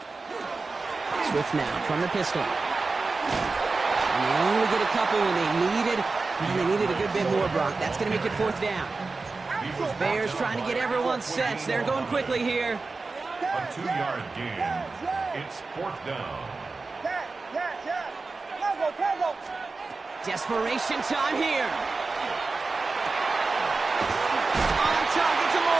Swift now from the pistol. And they only get a couple when they needed a good bit more, Brock. That's going to make it 4th down. Bears trying to get everyone set. They're going quickly here. A 2-yard gain. It's 4th down. Desperation time here. On target to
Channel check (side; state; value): left; quieter; 3.9 dB